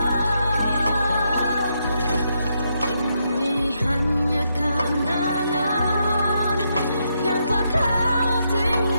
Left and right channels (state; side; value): inverted; both; correlation -0.80